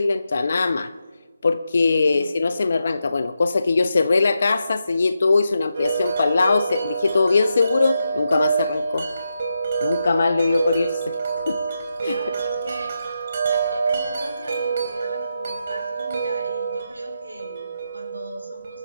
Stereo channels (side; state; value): both; inverted; correlation -0.86